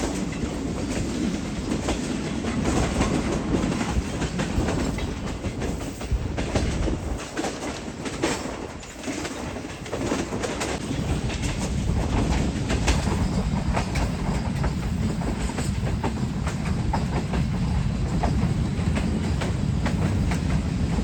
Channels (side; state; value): both; identical; correlation 1.00